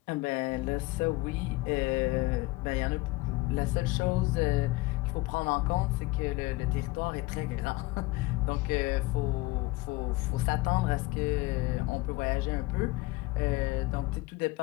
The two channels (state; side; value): quieter; right; 20.7 dB